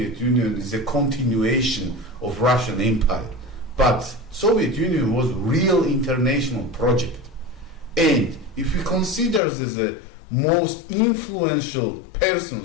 Union is a continuation of Russian Empire. But Soviet Union was a real international project. And if we consider the most influential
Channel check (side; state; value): right; drops out; at 9.4 s